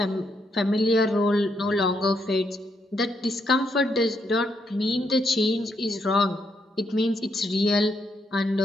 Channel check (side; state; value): both; normal; correlation 0.77